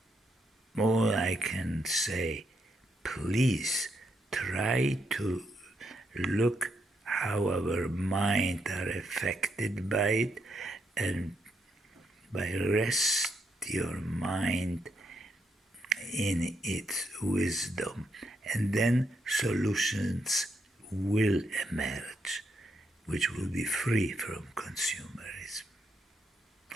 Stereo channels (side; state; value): both; normal; correlation 0.78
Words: all I can say, please try to look how our mind are affected by it and by rest your mind in its wisdom, and then solutions will emerge, which will be free from consumerism.